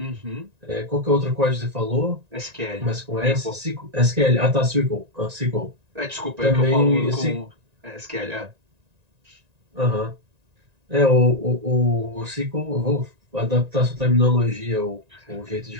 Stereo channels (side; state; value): left; late; 1.9 ms